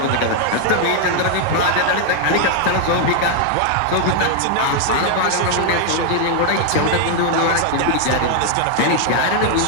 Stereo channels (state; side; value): different; both; correlation 0.00